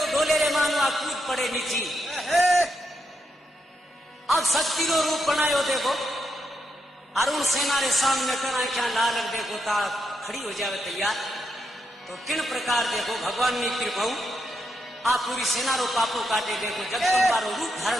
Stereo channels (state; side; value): normal; both; correlation 0.82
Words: डोले रे मानवा कूद पड़े नीची। अब शक्ति को रूप बनायो देखो, अरुण सेना रे सामने करा क्या लाल देखो ता खड़ी हो जावे तैयार। तो किन प्रकार देखो भगवान ने कृपा आप पूरी सेना रो पापों काटे देखो, जगदम्बा रो रूप